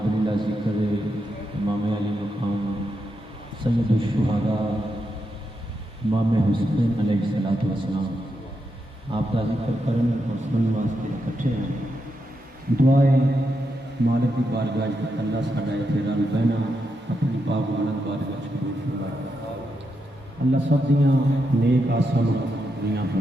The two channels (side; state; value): both; normal; correlation 0.84